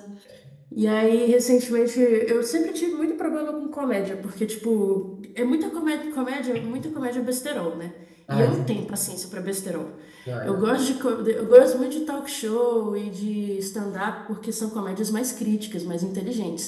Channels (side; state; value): both; identical; correlation 1.00